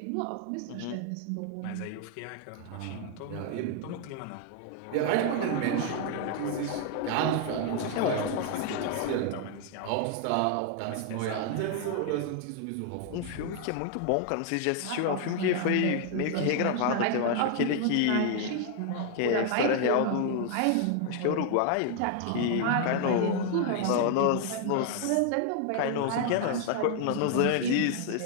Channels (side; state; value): both; different; correlation 0.00